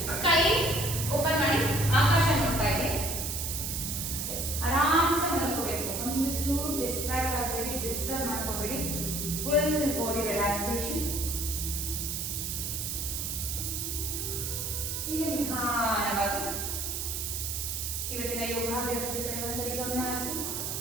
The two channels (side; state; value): right; noise; hiss, 3 dB below the sound